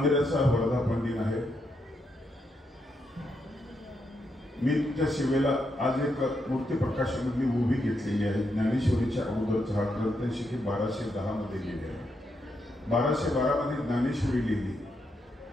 वर्धापन दिन आहे। मी त्या सेवेला आज एक मूर्ती प्रकाशामधली उभी घेतलेली आहे। ज्ञानेश्वरीच्या अगोदरचा हा ग्रंथ शके 1210 मध्ये लिहिले आहे। 1212 मध्ये ज्ञानेश्वरी लिहिली।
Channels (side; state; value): both; normal; correlation 0.81